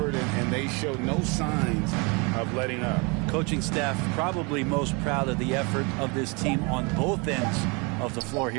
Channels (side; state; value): left; quieter; 30.2 dB